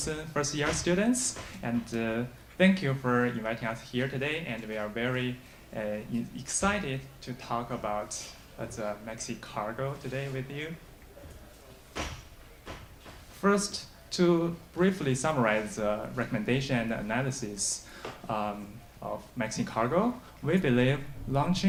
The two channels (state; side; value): identical; both; correlation 1.00